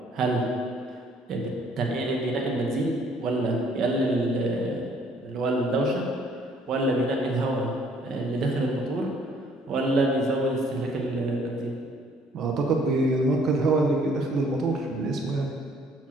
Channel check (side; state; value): both; normal; correlation 0.61